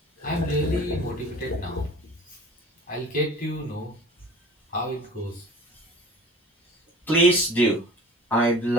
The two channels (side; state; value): both; normal; correlation 0.43